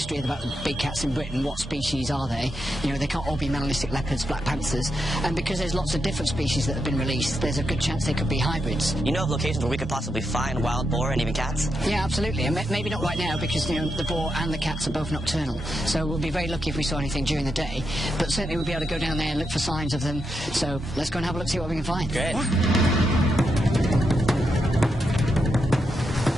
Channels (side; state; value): both; normal; correlation 0.84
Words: about the big cats in Britain. What species are they? They can't all be melanistic leopards, black panthers, and because there's lots of different species that have been released, there's a good chance they could be hybrids. You know of locations where we could possibly find wild boar and even cats? Yeah, absolutely, and maybe not right now because the boar and the cats are both nocturnal, so we'll be very lucky if we saw anything during the day, but certainly we'll be able to go down there and look for signs of them, so let's go and have a look, see what we can find. Great. Yeah.